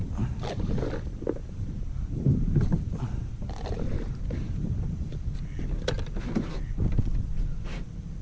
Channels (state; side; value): identical; both; correlation 1.00